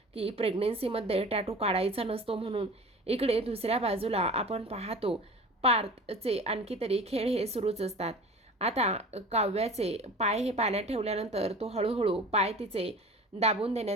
की प्रेग्नेन्सीमध्ये टॅटू काढायचा नसतो म्हणून. इकडे दुसऱ्या बाजूला आपण पाहतो पार्थचे आणखी तरी खेळ हे सुरूच असतात. आता काव्याचे पाय हे पाण्यात ठेवल्यानंतर तो हळूहळू पाय तिचे दाबून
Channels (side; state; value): both; normal; correlation 0.39